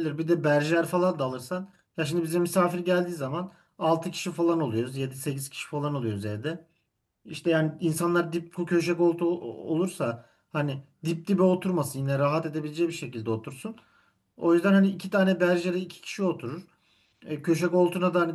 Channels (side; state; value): both; identical; correlation 1.00